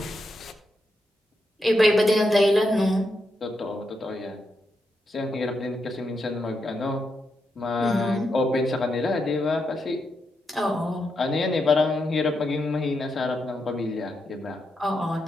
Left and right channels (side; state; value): both; normal; correlation 0.84